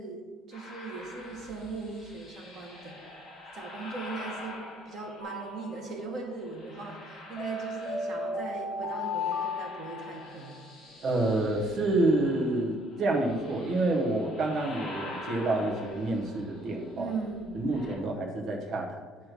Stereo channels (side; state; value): both; normal; correlation 0.65